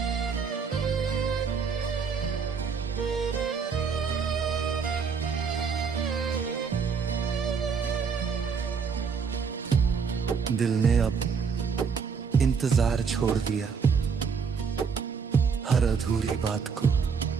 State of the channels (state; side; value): quieter; left; 5.9 dB